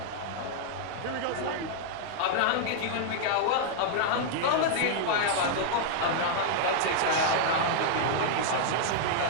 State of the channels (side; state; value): both; different; correlation -0.01